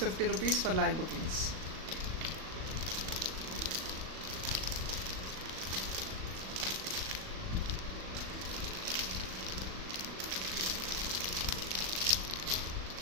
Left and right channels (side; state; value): left; late; 38 ms